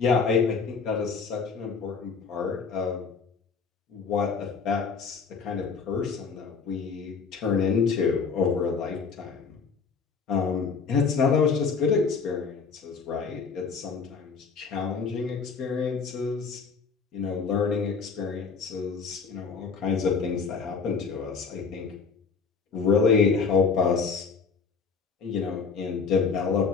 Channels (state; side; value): quieter; right; 5.3 dB